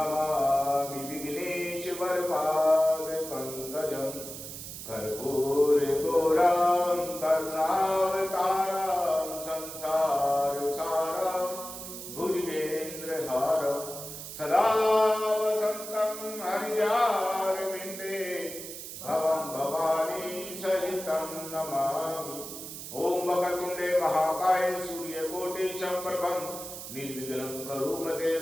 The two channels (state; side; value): noise; right; hiss, 10 dB below the sound